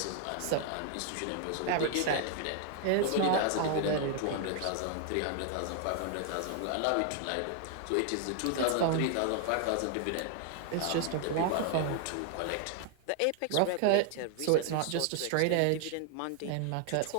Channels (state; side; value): different; both; correlation 0.00